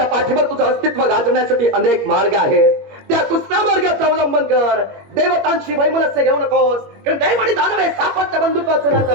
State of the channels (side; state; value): left; late; 21 ms